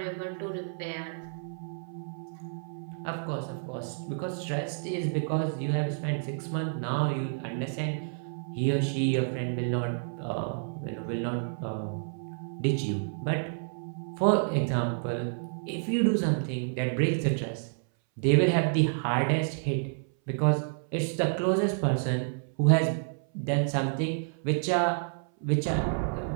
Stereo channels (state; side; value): silent; left; 58 dB below the other